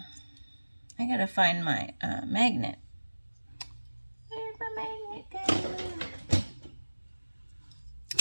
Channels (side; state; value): both; inverted; correlation -1.00